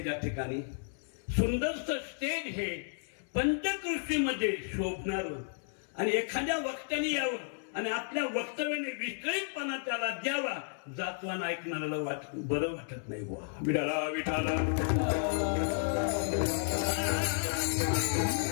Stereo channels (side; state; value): right; silent; digital silence